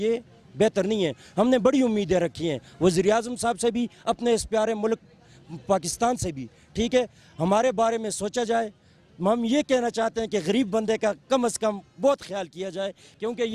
बेहतर नहीं है। हमने बड़ी उम्मीदें रखी हैं वज़ीर-ए-आज़म साहब से भी, अपने इस प्यारे मुल्क पाकिस्तान से भी। ठीक है, हमारे बारे में सोचा जाए। हम ये कहना चाहते हैं कि गरीब बंदे का कम से कम बहुत ख्याल किया जाए, क्योंकि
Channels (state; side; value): identical; both; correlation 1.00